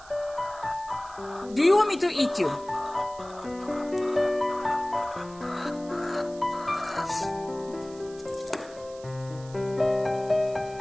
do you want me to eat you?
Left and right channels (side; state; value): right; noise; hiss, 21 dB below the sound